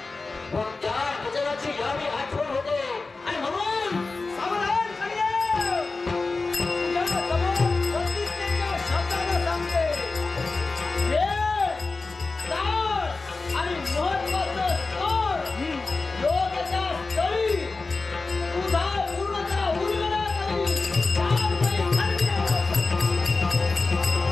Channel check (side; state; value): right; quieter; 3.8 dB